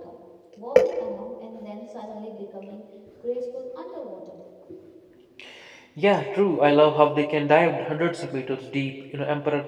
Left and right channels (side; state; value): both; identical; correlation 1.00